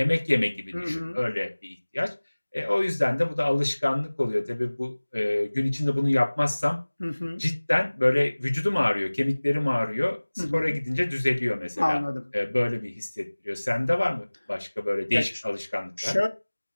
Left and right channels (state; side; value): inverted; both; correlation -1.00